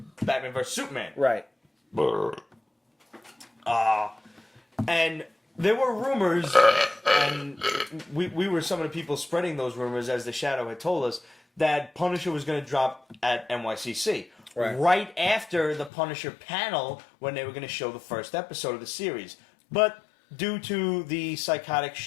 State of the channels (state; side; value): drops out; right; at 15.9 s